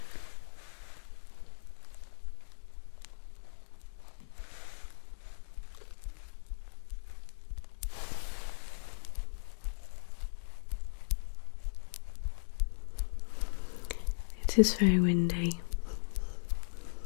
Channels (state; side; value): silent; right; digital silence